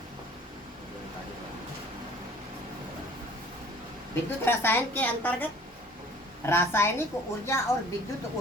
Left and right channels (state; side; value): normal; both; correlation 0.50